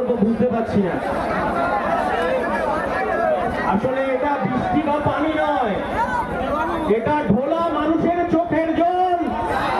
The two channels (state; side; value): identical; both; correlation 1.00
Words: বুঝতে পারছি না। আসলে এটা বৃষ্টি বা পানি নয়, এটা ঢোলা মানুষের চোখের জল।